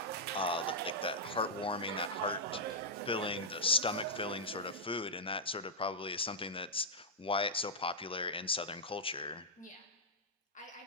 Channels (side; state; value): both; normal; correlation -0.07